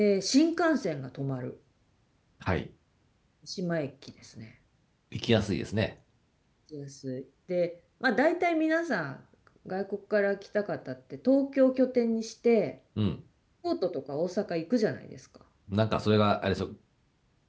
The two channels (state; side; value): identical; both; correlation 1.00